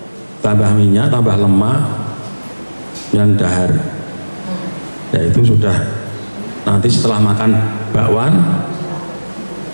tambah minyak, tambah lemak, yang dahar. Ya itu sudah, nanti setelah makan bakwan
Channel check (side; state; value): both; inverted; correlation -1.00